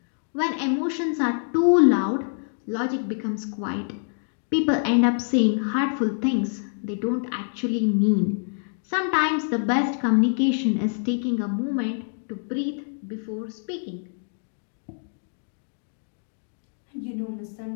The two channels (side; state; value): right; silent; 61 dB below the other